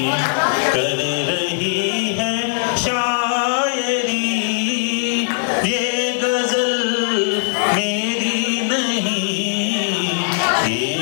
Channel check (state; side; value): silent; right; digital silence